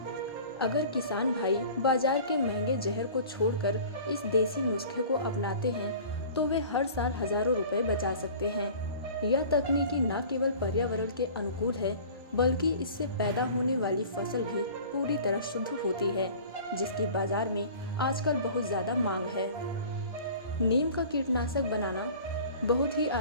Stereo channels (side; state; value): both; inverted; correlation -0.43